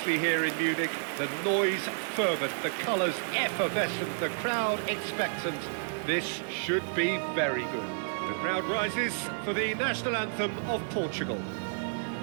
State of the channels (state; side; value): silent; left; digital silence